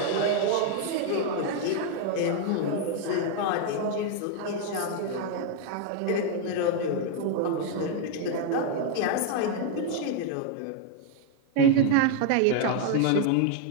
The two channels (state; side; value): different; both; correlation 0.00